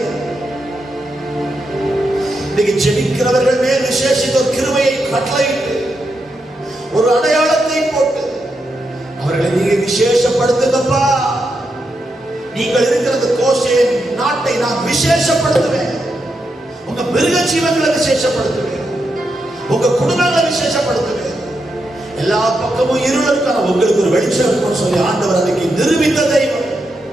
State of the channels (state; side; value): normal; both; correlation 0.84